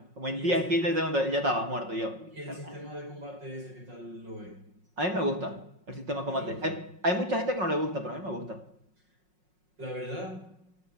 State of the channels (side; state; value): left; late; 5.5 ms